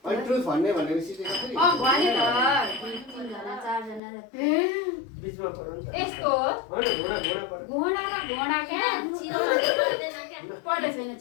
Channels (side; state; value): right; drops out; at 4.0 s